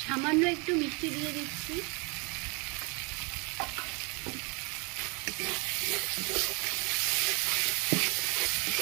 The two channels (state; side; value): quieter; left; 31.4 dB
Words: মিষ্টি দিয়ে দিচ্ছি।